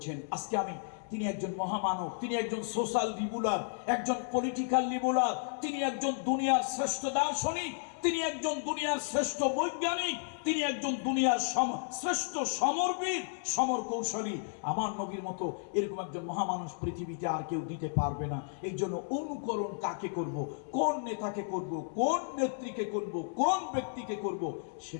আজকে তিনি একজন মহামানব, তিনি একজন সোশ্যাল লিবুলার, একজন পলিটিক্যাল লিবুলার, তিনি একজন দুনিয়ার শ্রেষ্ঠ দার্শনিক, তিনি একজন দুনিয়ার শ্রেষ্ঠ বৈজ্ঞানিক, তিনি একজন দুনিয়ার শ্রেষ্ঠ সমরবীর, সমর কৌশলী। আমার নবীর মতো এরকম একজন মহামানুষ পৃথিবীতে আর কেউ দিতে পারবে না। এই জন্য অনুকরণ কাকে করব, কোন নেতাকে করব, কোন নেত্রীকে করব, কোন ব্যক্তিকে করব,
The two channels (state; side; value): silent; right; 56 dB below the other